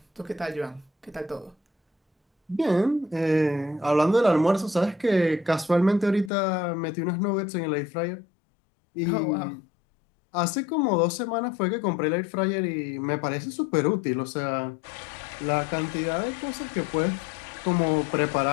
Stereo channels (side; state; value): right; drops out; at 6.3 s